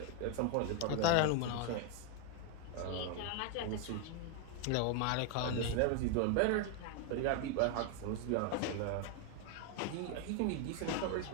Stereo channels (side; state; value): both; different; correlation 0.01